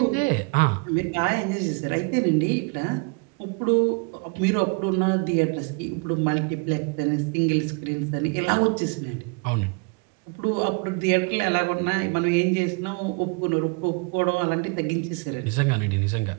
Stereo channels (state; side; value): quieter; left; 32.7 dB